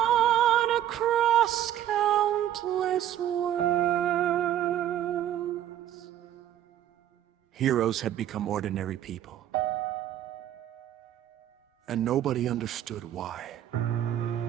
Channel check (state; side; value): quieter; left; 11.5 dB